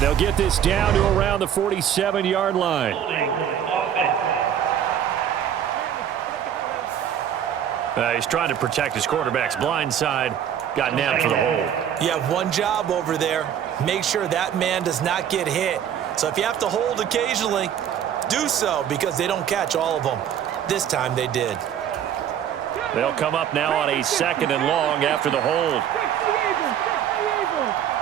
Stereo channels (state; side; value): quieter; left; 9.5 dB